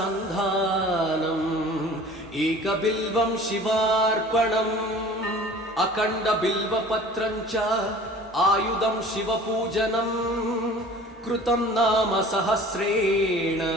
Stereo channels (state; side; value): normal; both; correlation 0.45